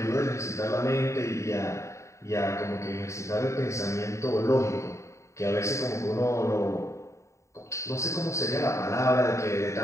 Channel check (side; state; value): right; late; 0.14 ms